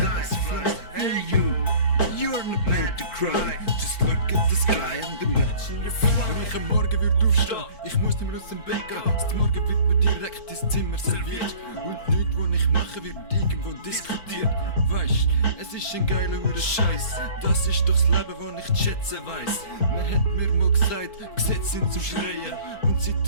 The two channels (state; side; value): late; right; 4.5 ms